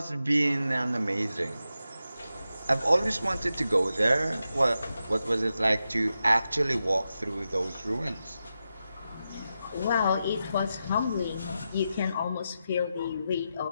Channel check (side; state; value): both; inverted; correlation -0.89